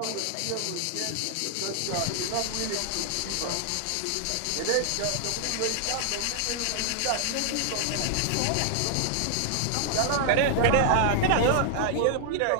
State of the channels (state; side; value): different; both; correlation 0.00